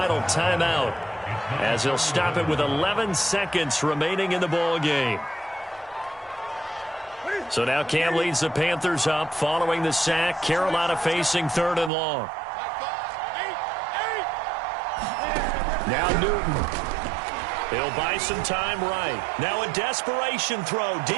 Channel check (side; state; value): left; drops out; at 11.9 s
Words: timeout, as he'll stop it with 11 seconds remaining in the ball game. So now Cam leads the Panthers up following the sack. Carolina facing 3rd and long. Now Newton. He'll buy some time right. Now a desperation throw